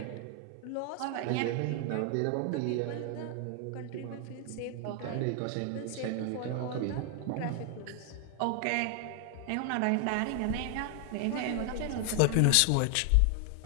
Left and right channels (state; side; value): different; both; correlation 0.00